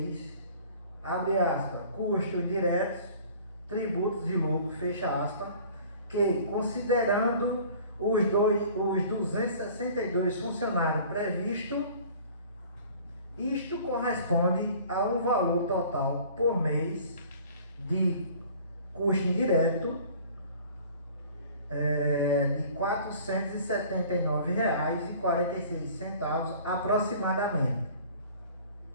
abre aspas, custos diretos, tributos e lucro, fecha aspas, que considerando os 262 funcionários previstos, isto corresponde a um valor total por mês de custo indireto de R$ 479,46 aproximadamente.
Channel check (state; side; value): inverted; both; correlation -0.48